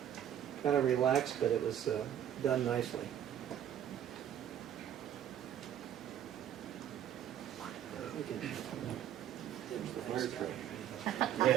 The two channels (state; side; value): quieter; left; 10.3 dB